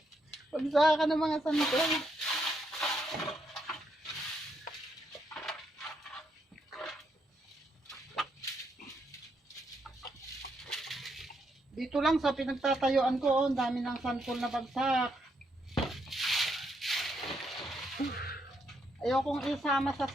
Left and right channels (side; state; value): both; normal; correlation 0.78